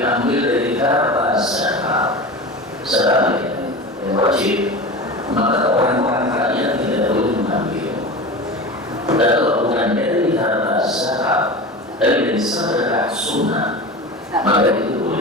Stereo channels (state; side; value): normal; both; correlation 0.30